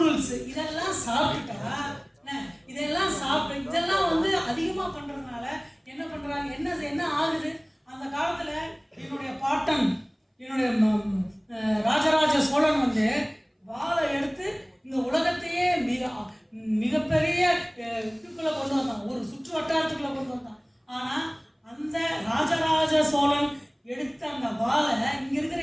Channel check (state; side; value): identical; both; correlation 1.00